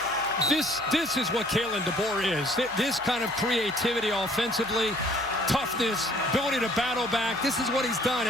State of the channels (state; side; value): noise; right; hum, 23 dB below the sound